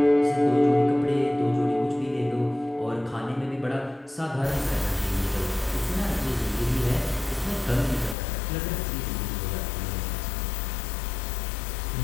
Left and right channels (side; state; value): right; drops out; at 8.2 s